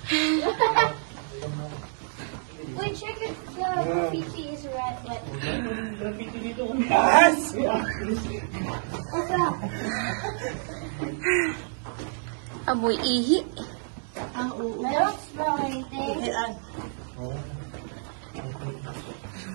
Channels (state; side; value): silent; left; digital silence